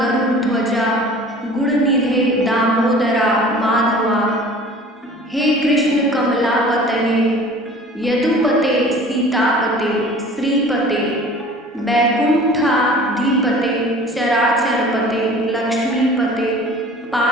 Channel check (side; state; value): both; normal; correlation 0.45